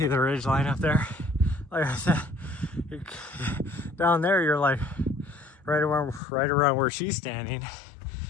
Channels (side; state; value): right; drops out; at 6.2 s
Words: the ridge line up there. Like I said, down there you're like right around where she's standing.